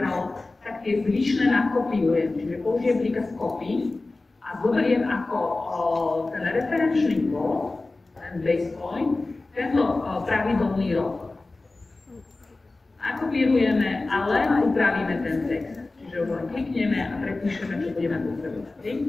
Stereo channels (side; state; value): right; quieter; 3.3 dB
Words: tak tie zvyšné nakopiujem. Čiže použijem príkaz copy a zoberiem ako ten referenčný kód, ten base point, tento pravidelný rok. Nakopírujeme a len upravíme ten text. Čiže už len klikneme a prepíšeme, čo budeme potrebovať.